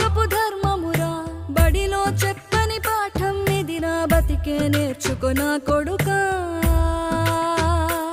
ధర్మమురా. బడిలో చెప్పని పాఠం ఇది, నా బతికే నేర్చుకో నా కొడుకా.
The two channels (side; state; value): both; identical; correlation 1.00